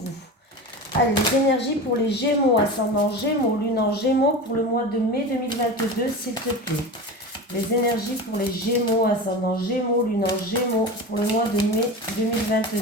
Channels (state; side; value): normal; both; correlation 0.29